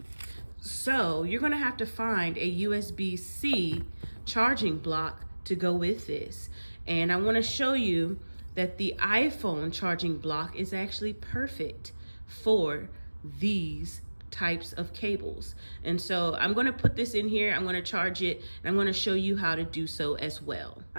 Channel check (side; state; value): both; inverted; correlation -1.00